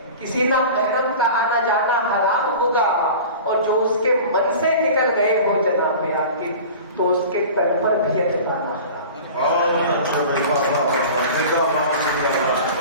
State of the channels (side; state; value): both; inverted; correlation -0.38